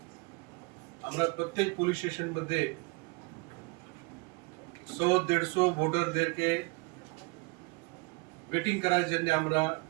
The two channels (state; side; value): quieter; left; 27.6 dB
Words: আমরা প্রত্যেক পুলিশ স্টেশন মধ্যে 100-150 ভোটারদেরকে ওয়েটিং করার জন্য আমরা